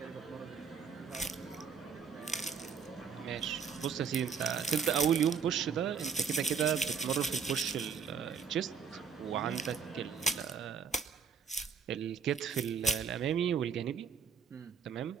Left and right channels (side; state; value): left; quieter; 6.3 dB